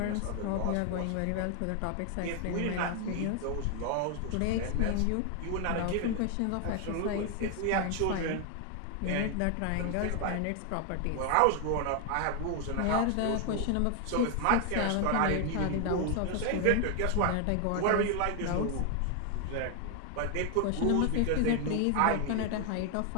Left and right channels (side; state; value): both; different; correlation 0.00